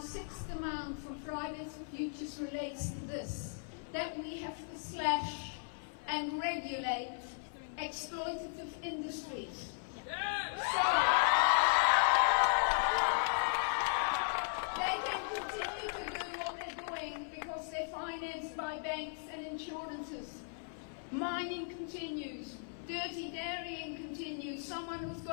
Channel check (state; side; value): silent; right; 53 dB below the other